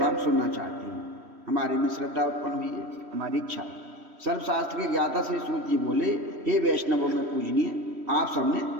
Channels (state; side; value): late; left; 3.1 ms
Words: सुनना चाहती हूँ। हमारे में श्रद्धा उत्पन्न हुई है, हमारी इच्छा। सर्वशास्त्र के ज्ञाता श्री सूत जी बोले, हे वैष्णवों में पूजनीय, आप सबने